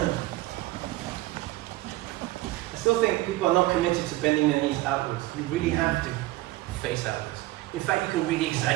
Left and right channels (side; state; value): left; quieter; 18.5 dB